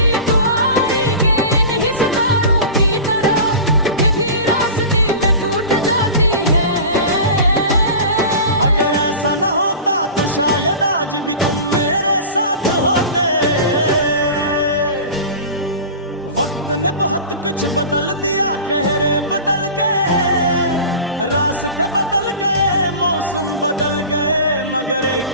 दुआई के इन्हीं सितारों की तरह के भी रास्ते में टूट जाती है। अगर ऐसा न होता तो शायद आज भी तुम मेरे साथ होते। वक्त ने बहुत कुछ बदल दिया, चेहरे बदल गए, रास्ते बदल गए, मौसम बदल गए, मगर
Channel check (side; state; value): both; inverted; correlation -0.34